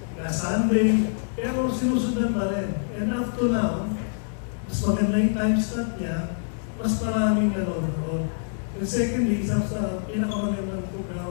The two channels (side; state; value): right; silent; digital silence